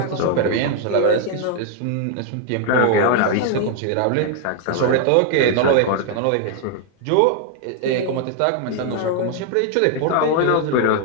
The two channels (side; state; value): both; different; correlation 0.00